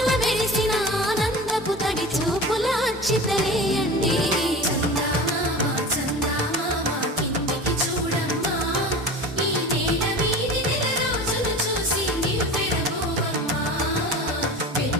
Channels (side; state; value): both; normal; correlation 0.34